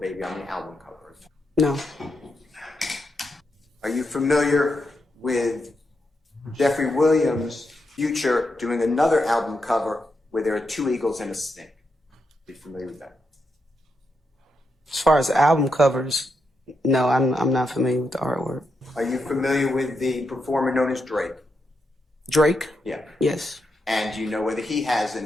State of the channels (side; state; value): both; normal; correlation 0.83